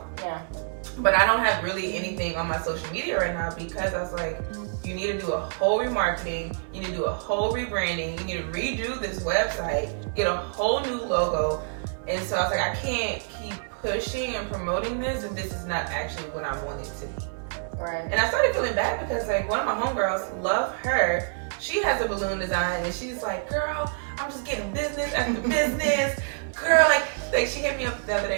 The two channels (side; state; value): left; silent; 56 dB below the other